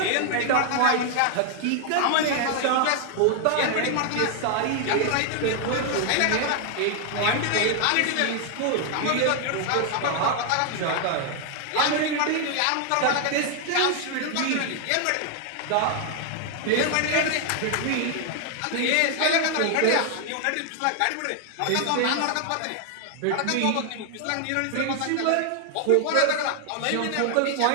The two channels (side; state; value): both; different; correlation 0.00